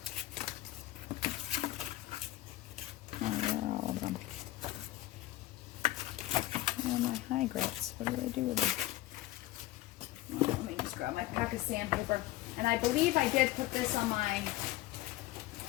Where are all of them? Where are my high grits? What did I do with them? Let me just grab my pack of sandpaper. And I believe I did put this on my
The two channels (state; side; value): quieter; right; 16.6 dB